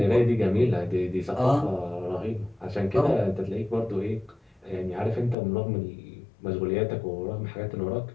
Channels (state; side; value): drops out; right; at 5.4 s